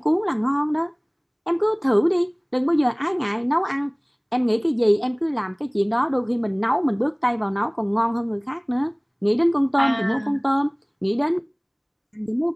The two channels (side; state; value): both; identical; correlation 1.00